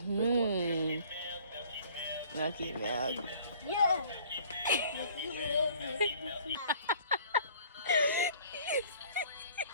Lucky milk. Yeah.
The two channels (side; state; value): both; inverted; correlation -0.53